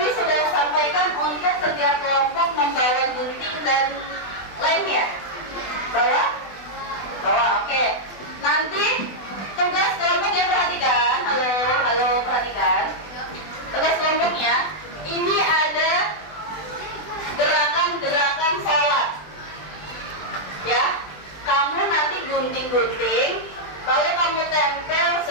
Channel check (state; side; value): late; right; 20 ms